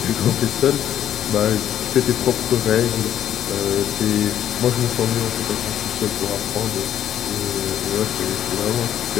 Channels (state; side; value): quieter; right; 10.6 dB